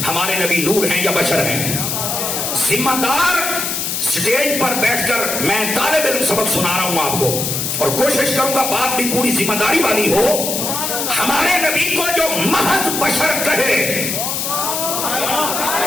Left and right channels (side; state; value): left; noise; hiss, 2 dB below the sound